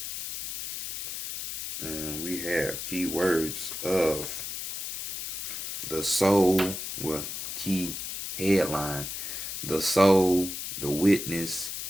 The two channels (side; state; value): left; noise; hiss, 6 dB below the sound